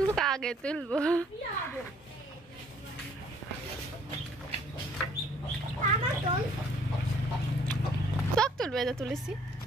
আগে তুলবো। সব তুলবে, এটা তুলেছি।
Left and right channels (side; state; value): both; normal; correlation 0.60